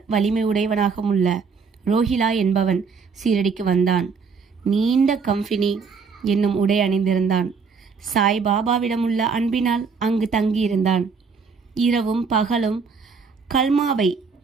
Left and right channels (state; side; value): quieter; left; 5.4 dB